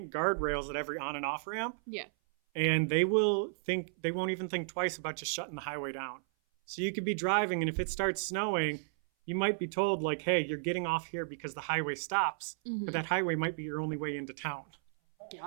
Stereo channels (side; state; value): left; silent; 55 dB below the other